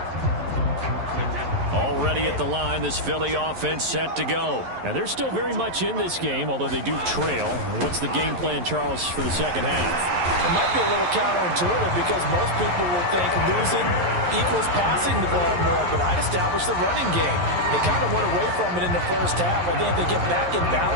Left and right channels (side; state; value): left; late; 11 ms